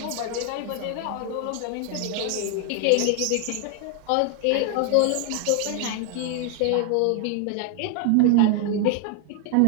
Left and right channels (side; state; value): both; different; correlation 0.00